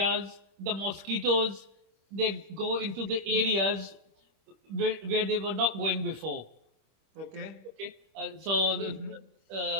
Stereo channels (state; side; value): late; left; 25 ms